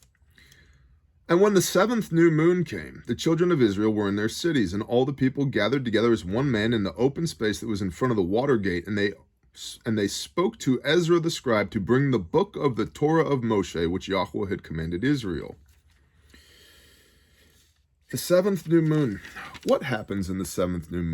And when the 7th new moon came, the children of Israel were in their cities, and all the people gathered together as one man in the open space that was in front of the water gate, and they spoke to Ezra the scribe to bring the book of the Torah of Moshe, which Yahweh had commanded Israel. The 7th new moon. What happens in the 7th new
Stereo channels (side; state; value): both; identical; correlation 1.00